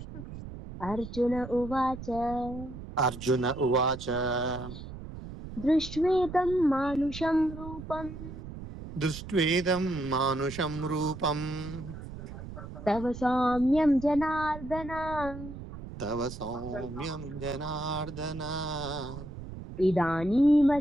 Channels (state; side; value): noise; right; rumble, 11 dB below the sound